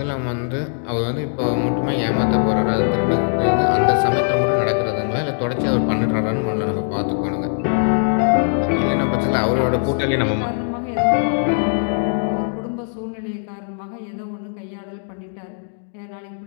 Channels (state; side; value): silent; right; digital silence